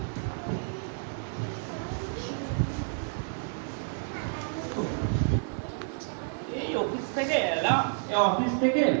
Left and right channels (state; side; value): silent; left; 58 dB below the other